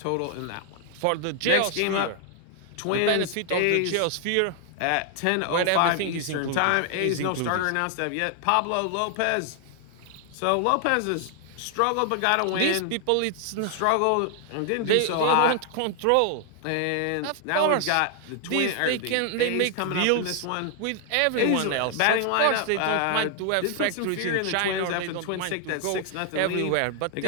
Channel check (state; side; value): different; both; correlation 0.00